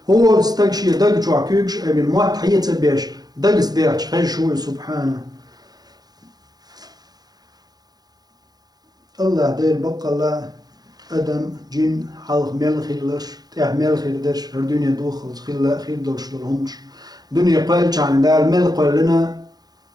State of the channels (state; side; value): late; left; 0.19 ms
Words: هو استكشي دق جوا كيكش أبي الموت حيت بيش دقس دخش خشوي سبحانه الله دير بقى الله أدم جن حلق ميل خيلش ميل خيردش هالدنيا دوخل خير دولش دولهمش دنيا قال عن دال ميل قال لنا